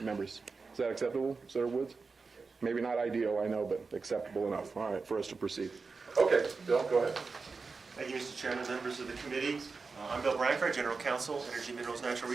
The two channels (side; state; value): left; quieter; 4.5 dB